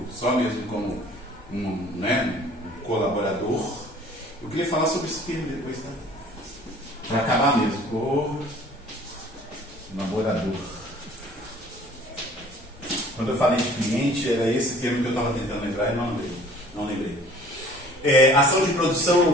só mesmo como um colaborador. Eu queria falar sobre esse termo depois, tá? Para acabar mesmo, colaborador. Quando eu falei de cliente, era esse termo que eu estava tentando lembrar e não lembrei. Ação de produção ou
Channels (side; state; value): both; normal; correlation 0.51